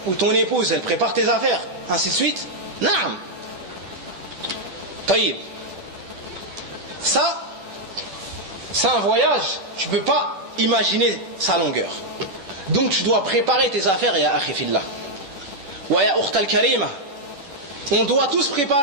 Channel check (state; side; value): late; left; 10 ms